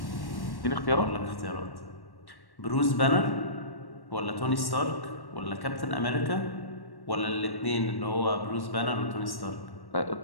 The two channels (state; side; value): late; right; 1.1 ms